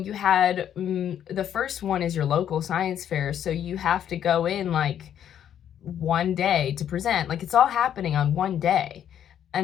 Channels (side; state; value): right; quieter; 9.8 dB